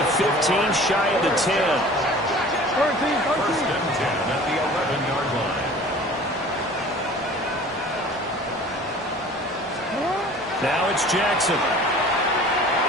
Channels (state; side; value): normal; both; correlation 0.45